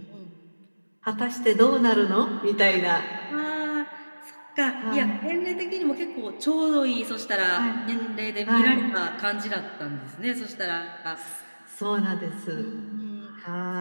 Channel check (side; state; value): both; inverted; correlation -1.00